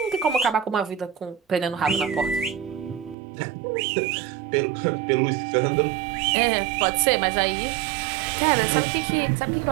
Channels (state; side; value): drops out; left; at 3.2 s